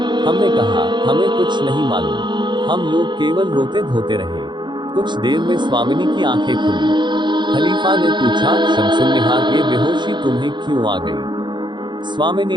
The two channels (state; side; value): late; left; 0.22 ms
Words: हमने कहा हमें कुछ नहीं मालूम, हम लोग केवल रोते धोते रहे। कुछ देर में स्वामिनी की आंखें खुली। खलीफा ने पूछा शमसुन्निहार ये बेहोशी तुम्हें क्यों आ गई?